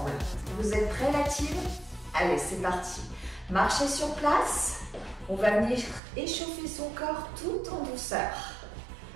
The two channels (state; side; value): drops out; left; at 6.0 s